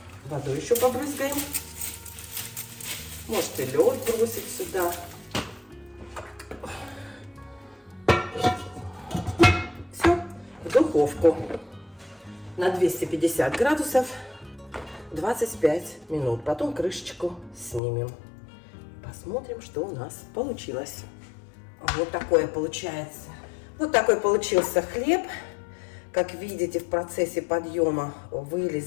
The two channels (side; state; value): right; drops out; at 17.8 s